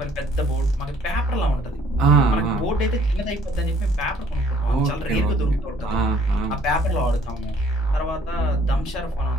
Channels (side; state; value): both; normal; correlation 0.60